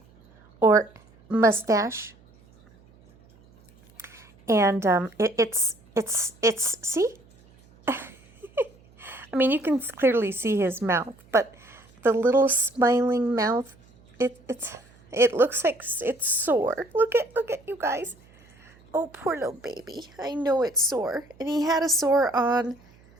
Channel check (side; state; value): right; noise; hum, 28 dB below the sound